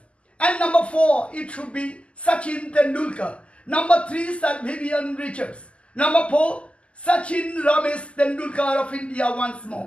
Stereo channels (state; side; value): late; right; 0.057 ms